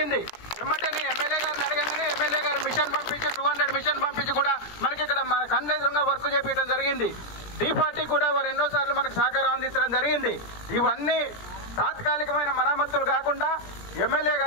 ఎమ్మటే ఎమ్మెల్యే గారిని అడగగానే ఎమ్మెల్యే గారు మిషన్ పంపించి 200 మిషన్ పంపించి కూడా మనకి ఇక్కడ మన కళ్ళెదురుగా వర్క్ చేపించడం జరిగింది. డి పార్టీ కూడా వారు ఎన్నోసార్లు మనకు సహకారం అందించడం జరిగింది. ఇవన్నీ తాత్కాలికమైన మరమ్మతులు కాకుండా ఎమ్మెల్యే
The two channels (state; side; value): late; right; 17 ms